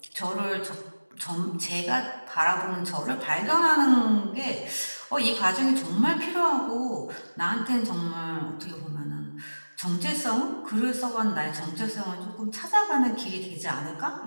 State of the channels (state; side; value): inverted; both; correlation -1.00